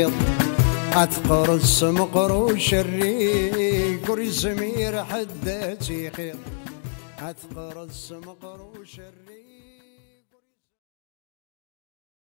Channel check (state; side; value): silent; right; 62 dB below the other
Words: أتقرص مقروش الريق وريزمير حداتي خير أتقرص مقروش